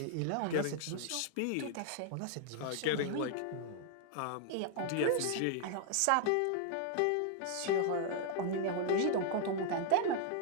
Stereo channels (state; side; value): different; both; correlation -0.01